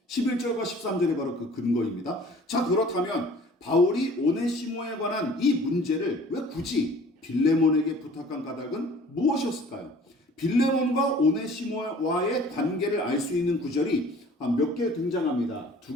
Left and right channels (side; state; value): both; normal; correlation 0.49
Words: 11절과 13절이 바로 그 근거입니다. 자, 그렇다면 바울이 오네시모에 관한 이 문제를 왜 굳이 빌레몬에게 부탁한 까닭은 무엇이었을까요? 빌레몬과 오네시모와의 관계를 알 수 있는 구절이 몇 개 등장합니다.